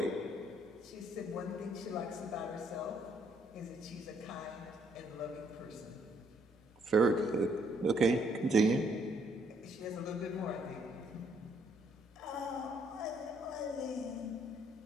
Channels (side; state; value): both; normal; correlation 0.69